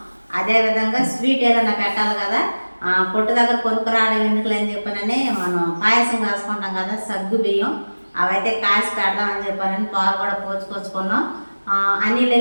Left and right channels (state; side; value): inverted; both; correlation -1.00